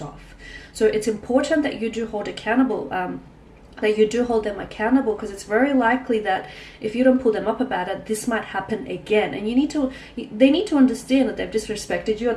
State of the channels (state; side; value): identical; both; correlation 1.00